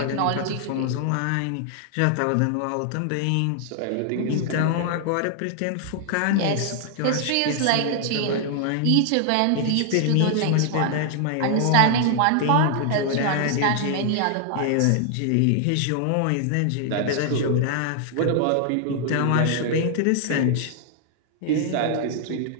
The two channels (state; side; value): different; both; correlation 0.00